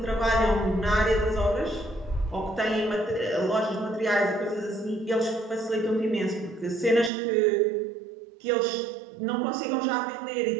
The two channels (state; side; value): drops out; left; at 7.1 s